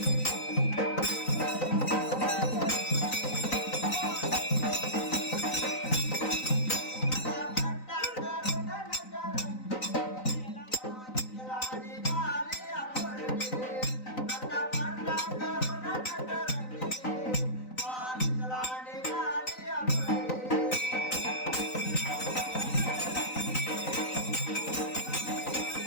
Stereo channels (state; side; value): late; right; 3.9 ms